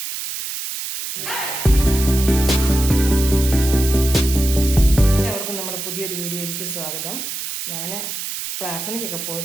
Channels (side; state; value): right; noise; hiss, 6 dB below the sound